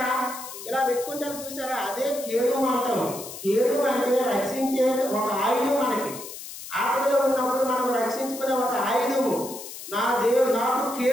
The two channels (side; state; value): left; noise; hiss, 12 dB below the sound